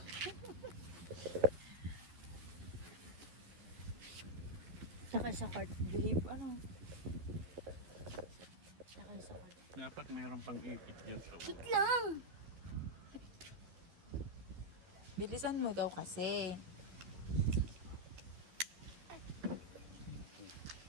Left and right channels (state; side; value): late; left; 11 ms